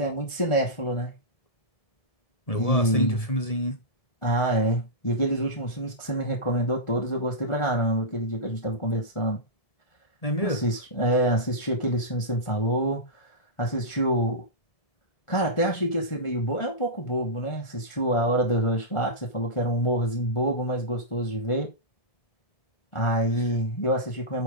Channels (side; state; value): right; late; 1.4 ms